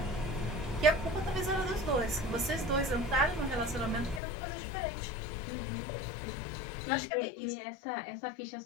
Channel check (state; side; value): drops out; right; at 4.2 s